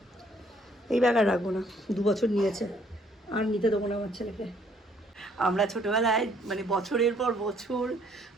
এই ব্যাগ আর রাখবো না, 2 বছর নিয়েছে, আর নিতে দেবো না আমার ছেলেকে। আমরা ছোটোবেলায় মানে বছরের পর বছর,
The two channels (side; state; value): both; normal; correlation 0.65